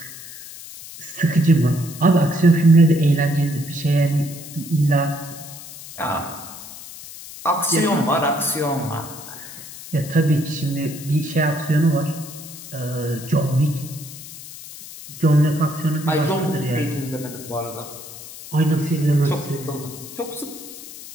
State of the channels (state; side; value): noise; left; hiss, 14 dB below the sound